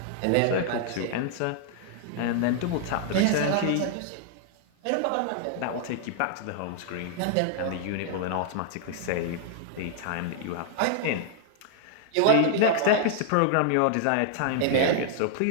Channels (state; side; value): different; both; correlation 0.00